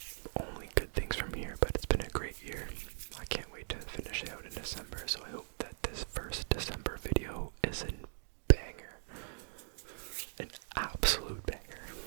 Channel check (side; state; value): left; silent; digital silence